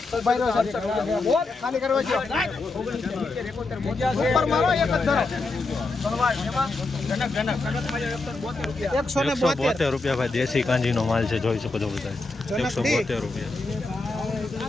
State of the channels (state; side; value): quieter; right; 3.4 dB